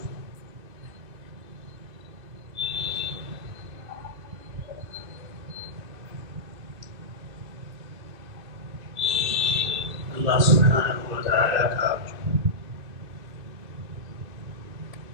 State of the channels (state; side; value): late; left; 2.6 ms